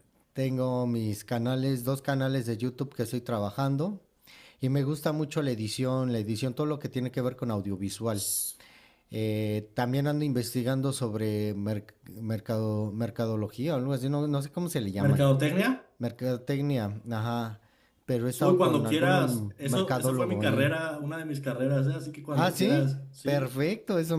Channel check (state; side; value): identical; both; correlation 1.00